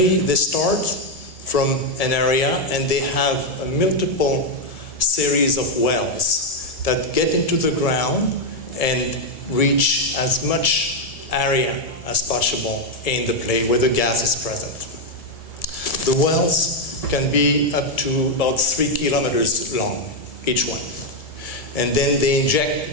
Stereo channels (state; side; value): late; right; 1.7 ms